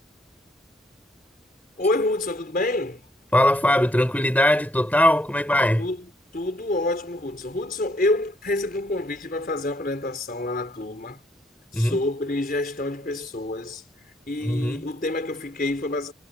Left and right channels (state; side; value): normal; both; correlation 0.69